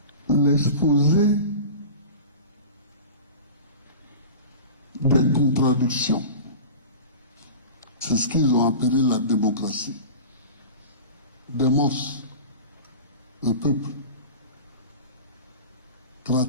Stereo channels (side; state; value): both; inverted; correlation -0.35